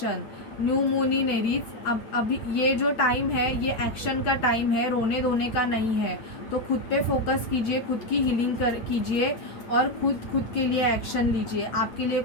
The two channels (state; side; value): late; right; 8.7 ms